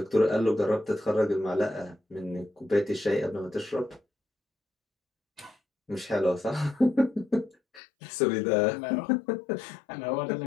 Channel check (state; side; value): drops out; right; at 7.8 s